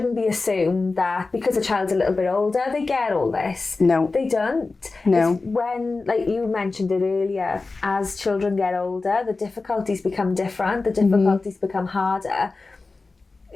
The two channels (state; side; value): quieter; right; 3.7 dB